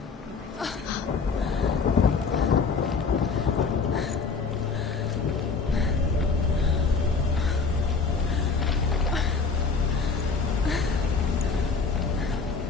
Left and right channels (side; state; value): right; quieter; 4.9 dB